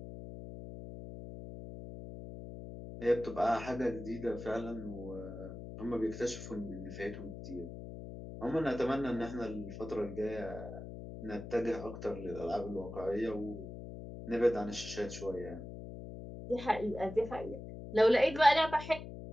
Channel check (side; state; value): left; noise; hum, 10 dB below the sound